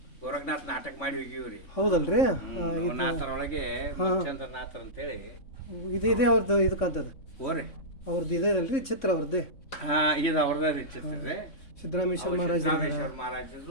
ಗೋರಖನಾಥ್ ನಾಟಕ ಮಾಡಿ ಹೋಗಿವಿ ರೀ. ಹೌದಲ್ರಿ? ನಾಥರೊಳಗೆ ಚಂದ್ರನಾಥ್ ಅಂತೇಳಿ ಇದೆ ಅವ್ರದ್ದು ಇದು ಕಾಣ್ತದೆ. ಓರಿ ಅವ್ರದ್ದು ಇದೆ ಅಲ್ರಿ ಚಿತ್ರ ಅವ್ರದ್ದೇ? ಹಾಂ, ಇದು ಅವ್ರದ್ದು ರೀ ಚಿತ್ರ ರೀ. ಸಿದ್ದರಾಮೇಶ್ವರ ಮಹಾರಾಜರು,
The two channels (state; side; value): late; right; 3.6 ms